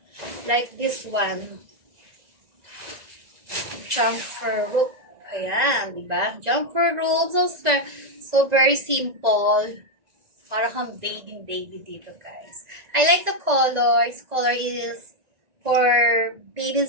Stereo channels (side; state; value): left; late; 1.9 ms